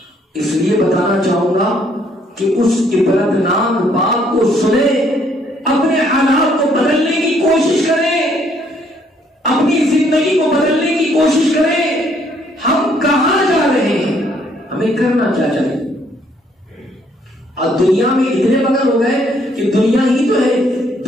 اس لیے بتانا چاہوں گا کہ اس عبرتناک بات کو سنیں، اپنے حالات کو بدلنے کی کوشش کریں، اپنی زندگی کو بدلنے کی کوشش کریں۔ ہم کہاں جا رہے ہیں؟ ہمیں کرنا کیا چاہیے؟ اور دنیا میں اتنے مگن ہو گئے کہ دنیا ہی تو ہے،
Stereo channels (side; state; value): both; normal; correlation 0.67